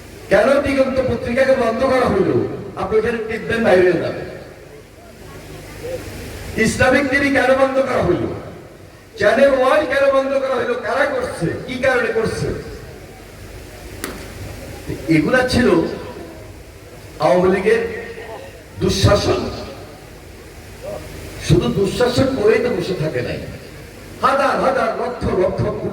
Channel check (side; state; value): both; identical; correlation 1.00